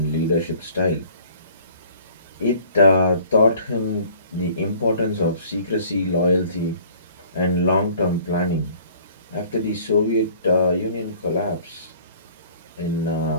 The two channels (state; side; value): inverted; both; correlation -0.53